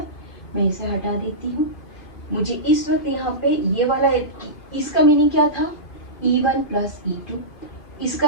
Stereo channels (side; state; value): right; late; 2.5 ms